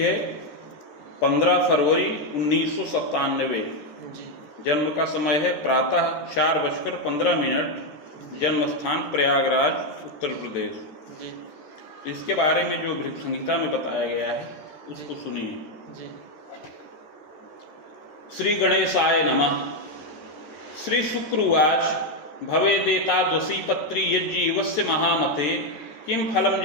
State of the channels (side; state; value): right; late; 13 ms